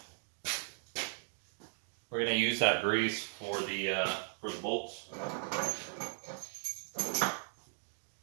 we're going to use that grease for the bolts.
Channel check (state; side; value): silent; left; digital silence